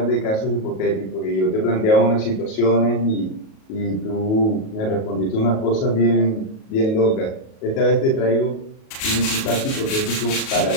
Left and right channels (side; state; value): right; late; 37 ms